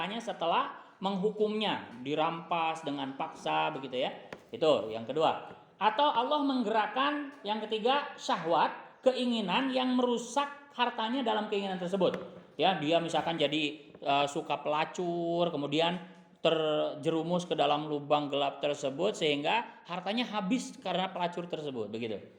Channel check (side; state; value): both; identical; correlation 1.00